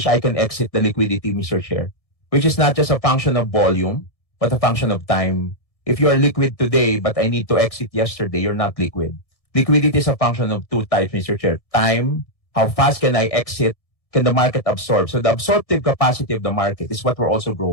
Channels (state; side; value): late; right; 1.6 ms